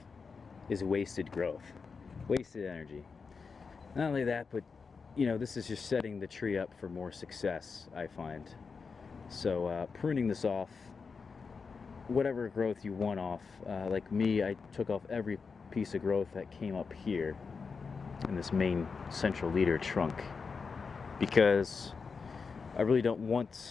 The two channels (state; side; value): quieter; right; 5.1 dB